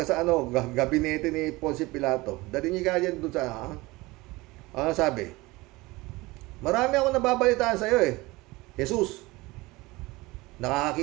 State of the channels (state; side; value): quieter; left; 21.6 dB